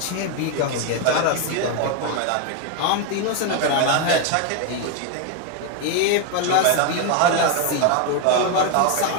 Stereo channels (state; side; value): different; both; correlation 0.01